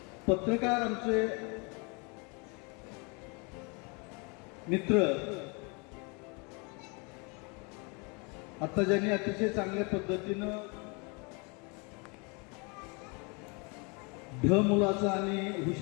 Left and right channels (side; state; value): right; quieter; 31.7 dB